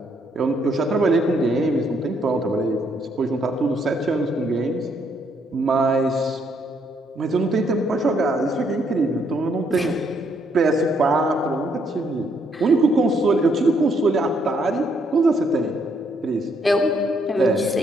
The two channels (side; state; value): both; normal; correlation 0.72